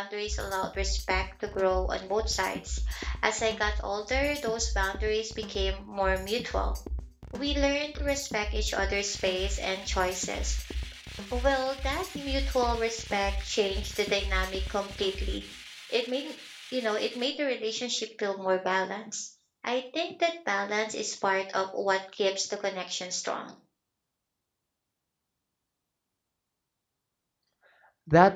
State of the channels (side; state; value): both; identical; correlation 1.00